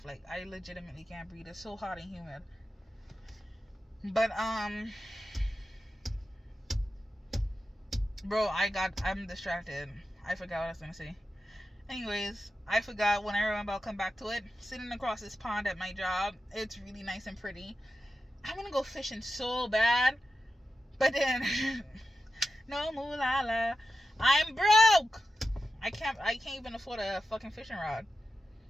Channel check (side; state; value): both; normal; correlation 0.91